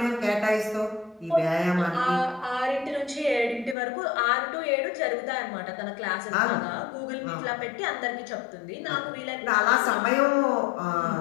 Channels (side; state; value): right; drops out; at 3.8 s